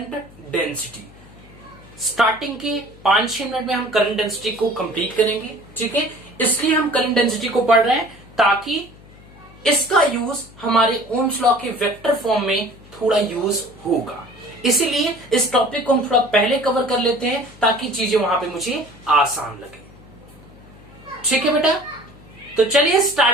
डेंसिटी। स्टार्टिंग के 5-6 मिनट में हम करंट डेंसिटी को कंप्लीट करेंगे, ठीक है। इसलिए हम करंट डेंसिटी को पढ़ रहे हैं ताकि इसका यूज हमारे ओम्स लॉ के वेक्टर फॉर्म में थोड़ा यूज होगा। इसीलिए इस टॉपिक को हम थोड़ा पहले कवर कर लेते हैं ताकि चीजें वहां पे मुझे आसान लगे, ठीक है बेटा। तो चलिए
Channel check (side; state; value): left; noise; hum, 22 dB below the sound